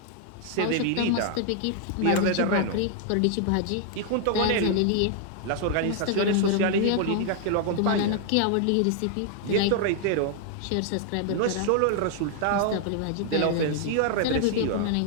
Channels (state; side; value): different; both; correlation 0.00